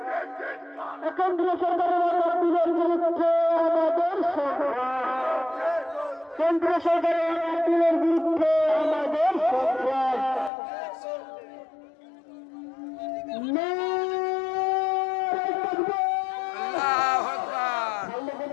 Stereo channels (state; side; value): drops out; right; at 10.5 s